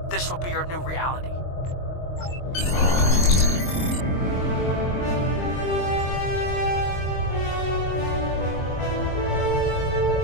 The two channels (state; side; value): late; right; 22 ms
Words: this will be your new reality.